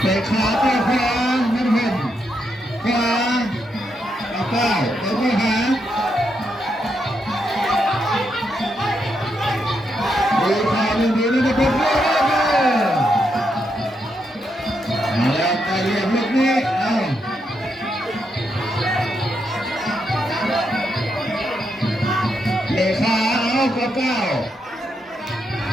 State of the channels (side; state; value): both; normal; correlation 0.81